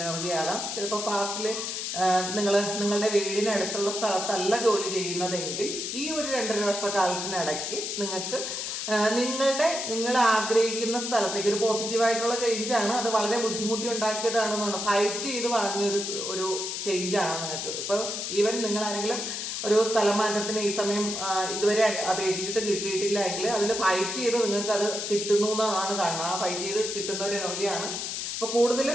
ആകാം. ചിലപ്പോൾ പാസ്റ്റിൽ നിങ്ങളുടെ വീടിനടുത്തുള്ള സ്ഥലത്തല്ല ജോലി ചെയ്യുന്നതെങ്കിൽ ഈ ഒരു 2.5 വർഷക്കാലത്തിനിടയ്ക്ക് നിങ്ങൾക്ക് നിങ്ങൾ ആഗ്രഹിക്കുന്ന സ്ഥലത്തേക്ക് ഒരു പോസിറ്റീവായിട്ടുള്ള ചേഞ്ചാണ്. അത് വളരെ ബുദ്ധിമുട്ടി ഉണ്ടാക്കിയതാണെന്നുണ്ട്, ഫൈറ്റ് ചെയ്ത് വാങ്ങിയ ഒരു ചേഞ്ചാണ് നിങ്ങൾക്ക്. ഇപ്പോൾ ഈവൻ നിങ്ങൾ ആരെങ്കിലും ഒരു സ്ഥലം മാറ്റത്തിന് ഈ സമയം ഇതുവരെ അപേക്ഷിച്ചിട്ട് കിട്ടിയിട്ടില്ല എങ്കിൽ അതിൽ ഫൈറ്റ് ചെയ്ത് നിങ്ങൾക്ക് അത് കിട്ടുന്നു എന്നാണ് കാണുന്നത്. ആ ഫൈറ്റ് ചെയ്ത് കിട്ടുന്ന ഒരു എനർജിയാണ്. അപ്പോൾ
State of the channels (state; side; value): noise; left; hiss, 4 dB below the sound